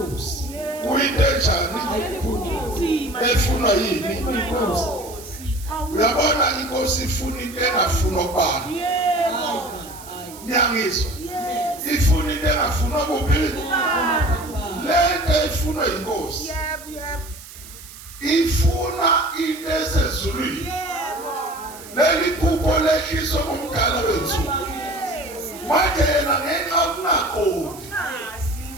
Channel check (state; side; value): noise; right; hiss, 17 dB below the sound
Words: kuyinto enjani efunwa yini inkosi uyabona inkosi ifuna into engafunwa kubani nyangizwa ifuna into engafunwa kuphi lento ifunwa inkosi ifuna into esezulwini leli phupho lehliswa ngumdala wensuku manje yena ngenxa yokungaqondi